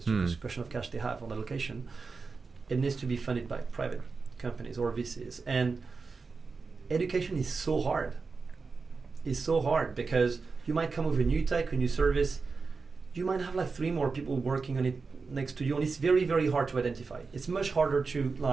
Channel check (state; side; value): quieter; left; 4.5 dB